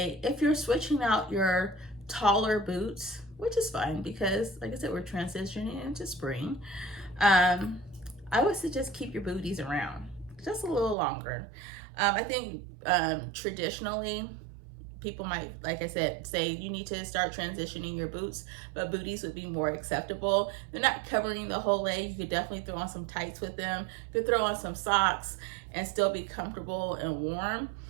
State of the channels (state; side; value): drops out; left; at 11.0 s